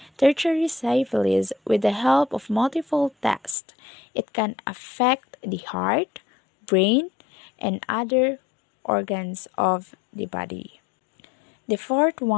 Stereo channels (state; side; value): drops out; right; at 3.6 s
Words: tertiary syphilis with the help of multiple tests. It can affect the heart, brain, and other organs of the body. The fourth